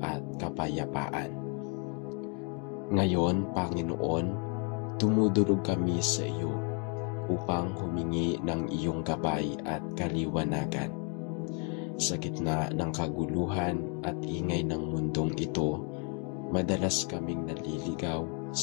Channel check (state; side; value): quieter; right; 37.8 dB